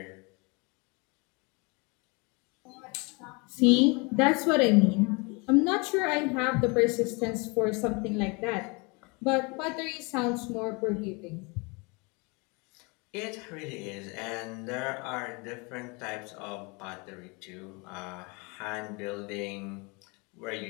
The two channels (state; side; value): quieter; right; 29.6 dB